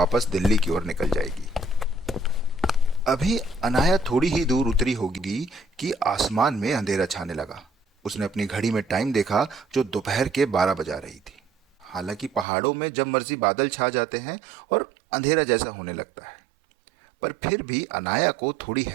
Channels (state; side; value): drops out; left; at 12.5 s